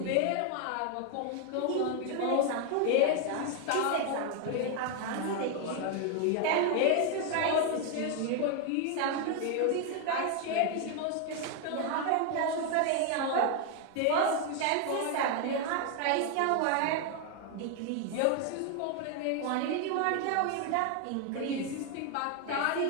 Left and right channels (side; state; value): both; different; correlation 0.01